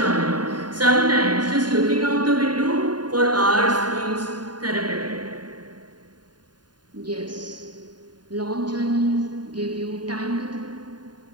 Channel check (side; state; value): left; late; 0.70 ms